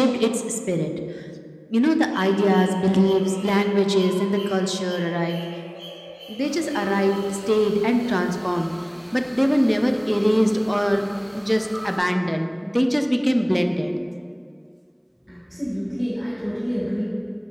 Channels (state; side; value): identical; both; correlation 1.00